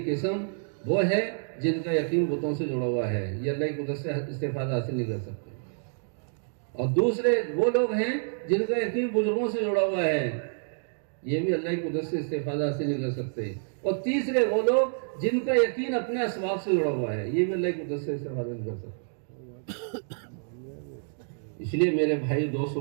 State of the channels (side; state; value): left; silent; digital silence